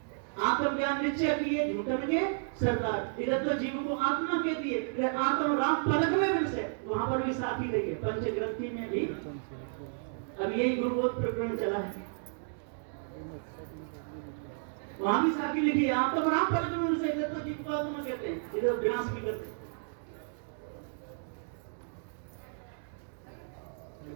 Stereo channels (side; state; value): left; silent; digital silence